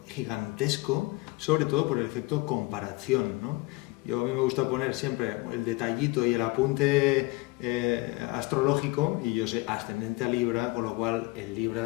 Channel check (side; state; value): right; quieter; 22.7 dB